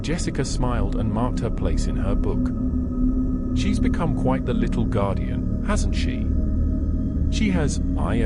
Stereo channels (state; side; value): identical; both; correlation 1.00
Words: Jessica smiled and marked her place in her book. "She's become quite the little guardian, hasn't she?" "She has," I